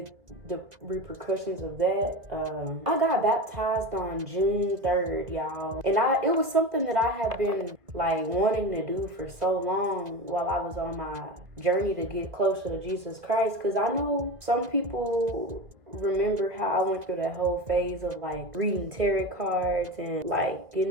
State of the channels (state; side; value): late; left; 1.8 ms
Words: the repercussions of that. I got baptized on June 3rd, y'all. And it was something that I have been like wanting to do for so long while I was on my journey to get closer to Jesus Christ. Because I know some people remember how I went through that whole phase of like reading tarot cards and like